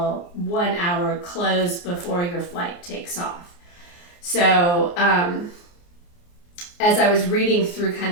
1 hour close before your flight takes off. So as I was reading through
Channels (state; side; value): late; right; 29 ms